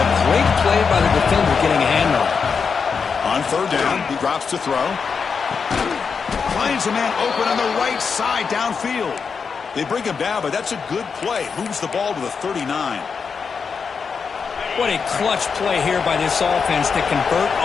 great play by the defender getting a hand on it. On 3rd down, he drops to throw. Finds a man open on the right side downfield. They bring him down, but that's a good play. Moves the ball to the 39. What a clutch play here by this offense to convert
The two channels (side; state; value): right; quieter; 5.7 dB